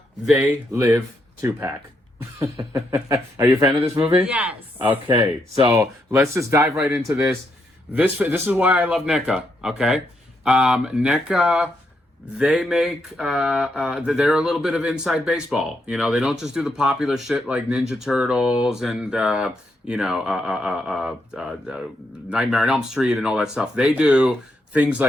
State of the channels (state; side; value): normal; both; correlation 0.79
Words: They Live 2-pack. Are you a fan of this movie? Yes. Okay, so let's just dive right into this. This is why I love NECA, okay? NECA, they make, they're a little bit of inside baseball. You know, they don't just do the popular shit like Ninja Turtles and, Nightmare on Elm Street and all that stuff. They do things